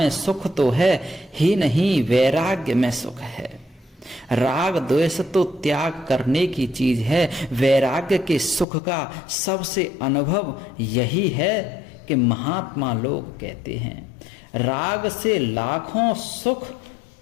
सुख तो है ही नहीं, वैराग्य में सुख है। राग द्वेष तो त्याग करने की चीज है। वैराग्य के सुख का सबसे अनुभव यही है कि महात्मा लोग कहते हैं राग से लाखों सुख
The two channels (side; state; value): right; drops out; at 8.7 s